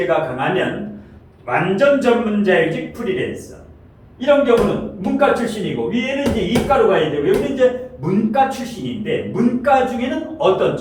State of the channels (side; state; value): both; identical; correlation 1.00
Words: 강하면 완전 전문자일직 프리랜서. 이런 경우는 문과 출신이고 위에는 이제 이과로 가야 되고 여기는 이제 문과 출신인데 문과 중에는 어떤